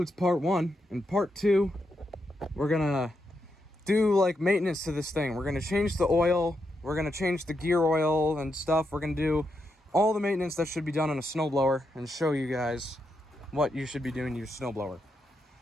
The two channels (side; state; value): both; normal; correlation 0.83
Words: part 1. In part 2, we're gonna do like maintenance to this thing. We're gonna change the oil, we're gonna change the gear oil and stuff. We're gonna do all the maintenance that should be done on a snowblower and show you guys what you should be doing to your snowblower.